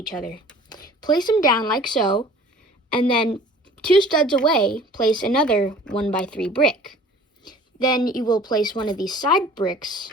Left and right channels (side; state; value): both; normal; correlation 0.48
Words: other. Place them down like so, and then 2 studs away, place another 1x3 brick. Then you will place one of these side bricks